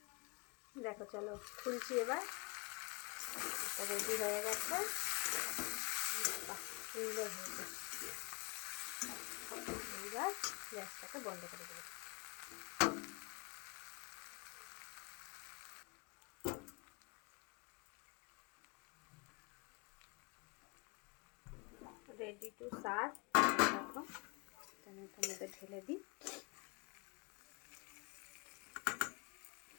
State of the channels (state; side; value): quieter; right; 30.3 dB